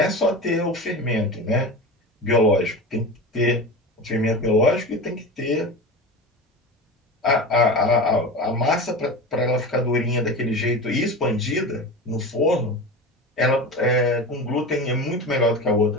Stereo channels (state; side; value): normal; both; correlation 0.28